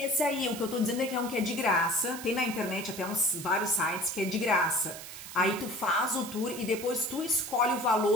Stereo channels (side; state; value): right; noise; hiss, 12 dB below the sound